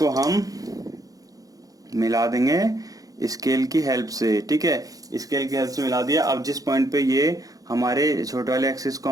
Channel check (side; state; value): left; late; 0.17 ms